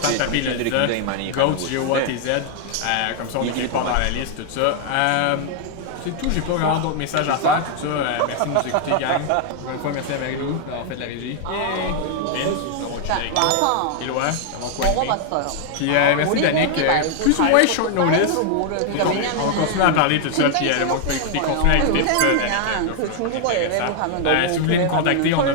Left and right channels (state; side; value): different; both; correlation 0.00